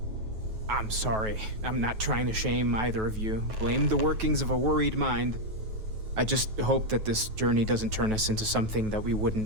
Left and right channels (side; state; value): left; late; 9.3 ms